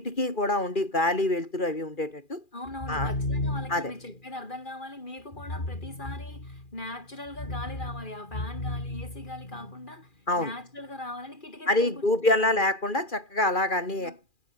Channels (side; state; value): right; late; 2.4 ms